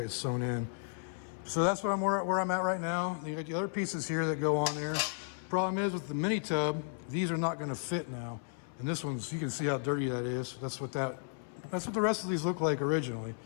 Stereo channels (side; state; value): right; silent; 55 dB below the other